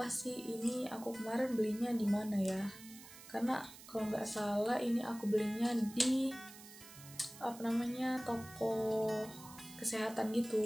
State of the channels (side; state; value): right; noise; hiss, 17 dB below the sound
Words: sih ini aku kemarin belinya di mana ya, karena kalau nggak salah ini aku belinya di toko kesehatan gitu.